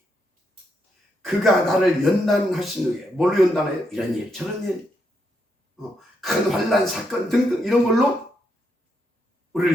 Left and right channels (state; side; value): normal; both; correlation 0.80